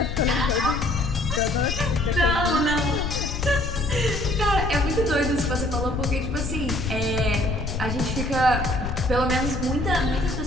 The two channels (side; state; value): left; noise; rumble, 4 dB below the sound